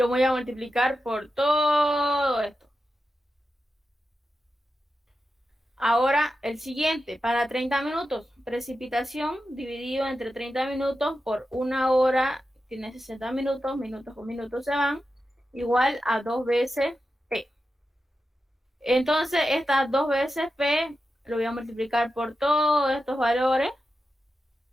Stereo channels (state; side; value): normal; both; correlation 0.91